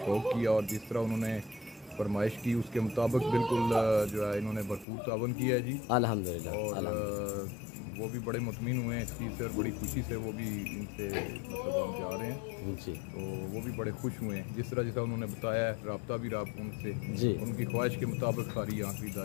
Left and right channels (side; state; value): right; drops out; at 4.9 s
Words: شوق کیا اور جس طرح انہوں نے فرمائش کی اس کے مطابق بالکل جو ہے انہوں نے بھرپور تعاون کیا ہے جی الحمدللہ، اور وہ بھی بڑے مطمئن ہوئے ہیں اس چیز سے اور بڑی خوشی سے وہ بھی ان سے مطلب ہم جا رہے ہیں جی، تو وہ بھی بڑے خوش ہوئے ہیں جس طرح انہوں نے بتایا ہے، رابطہ بھی رہا ان سے جی، ان کی خواہش کے مطابق ساری یہاں